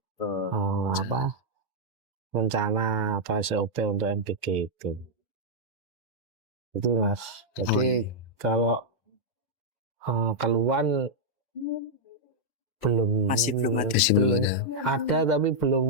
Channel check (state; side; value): normal; both; correlation -0.05